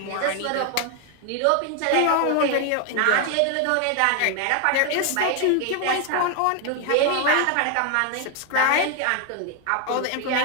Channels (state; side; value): different; both; correlation 0.01